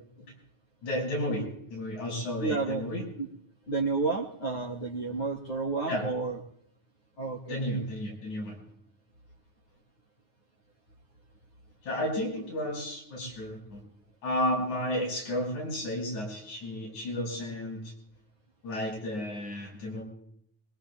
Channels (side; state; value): right; late; 9.5 ms